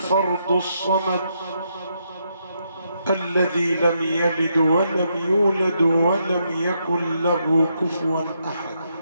الصمد الذي لم يلد ولم يولد ولم يكن له كفوا أحد.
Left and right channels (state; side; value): inverted; both; correlation -0.78